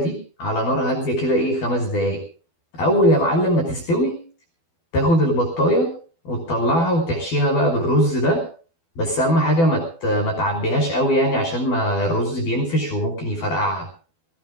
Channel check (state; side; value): late; right; 12 ms